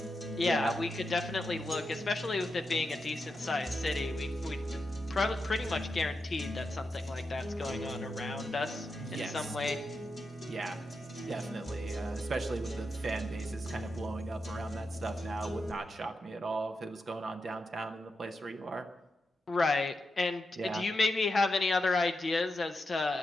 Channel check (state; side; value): normal; both; correlation 0.87